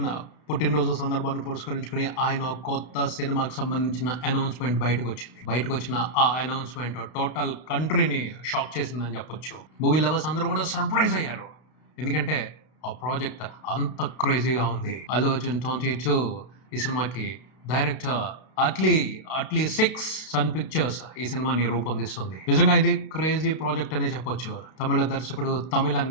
పుట్టినరోజు సందర్భాన్ని పురస్కరించుకుని ఆయన కొత్త సినిమాకి సంబంధించిన అనౌన్స్మెంట్ బయటకు వచ్చిన ఆ అనౌన్స్మెంట్ టోటల్ కంట్రీని షాక్ చేసిందని చెప్పొచ్చు. మూవీ లవర్స్ అందరూ కూడా సర్ప్రైజ్ అయ్యారు, ఎందుకంటే ఆ ప్రాజెక్ట్ అంత క్రేజీగా ఉంది. అల్లు అర్జున్ 22 ఈ సినిమాకి డైరెక్టర్ అట్లీ 6 సన్ పిక్చర్స్ ఈ సినిమాని రూపొందిస్తుంది. నిజంగా ఇది క్రేజీ ప్రాజెక్ట్ అనే చెప్పొచ్చు. తమిళ దర్శకుడు, తమిళ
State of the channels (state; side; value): late; right; 32 ms